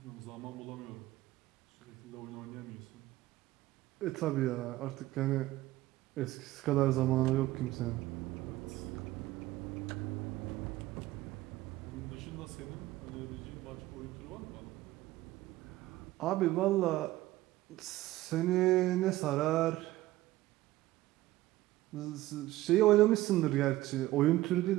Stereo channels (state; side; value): quieter; left; 16.8 dB